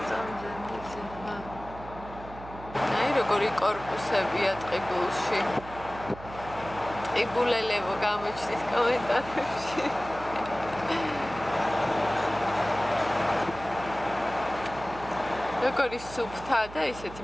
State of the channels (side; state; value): right; noise; hum, 15 dB below the sound